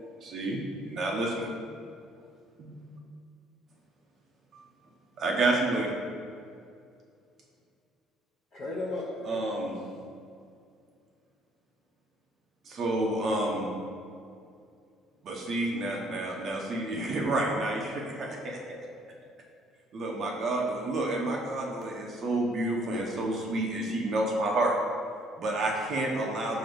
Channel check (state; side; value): normal; both; correlation 0.63